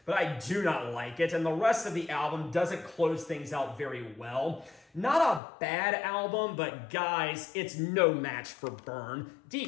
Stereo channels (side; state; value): right; drops out; at 5.4 s